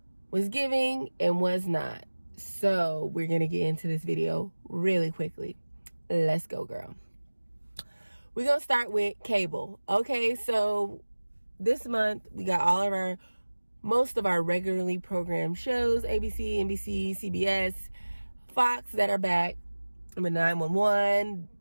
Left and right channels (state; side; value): inverted; both; correlation -1.00